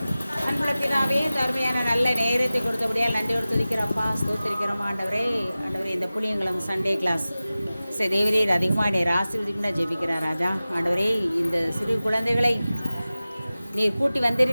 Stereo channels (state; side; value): inverted; both; correlation -0.97